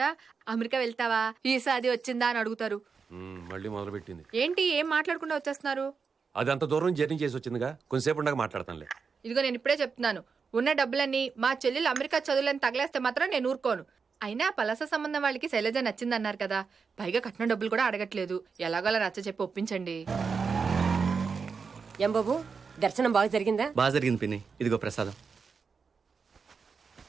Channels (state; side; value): quieter; left; 5.4 dB